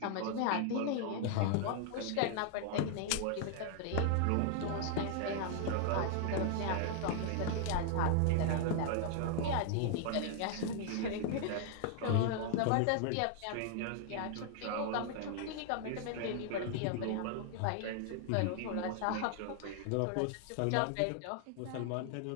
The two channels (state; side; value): different; both; correlation 0.00